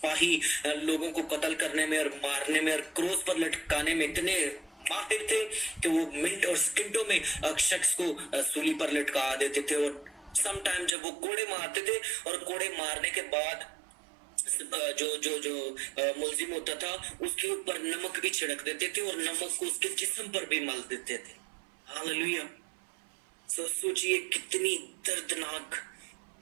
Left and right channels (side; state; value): left; drops out; at 11.0 s